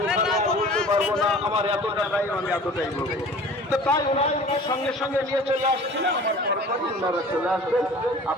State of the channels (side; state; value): both; normal; correlation 0.44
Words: বলতে পারবো না, আমার এত টাকাই আমি এতটাই বলবো। তো তাই ওনারা সঙ্গে সঙ্গে নিয়ে চলে আসছিলেন, আমার পরপরই ওনারা চলে আসবেন।